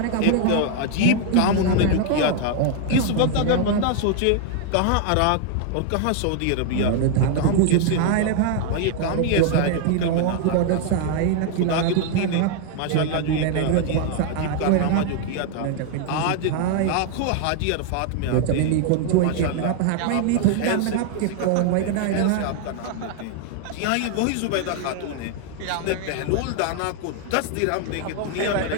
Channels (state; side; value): different; both; correlation 0.00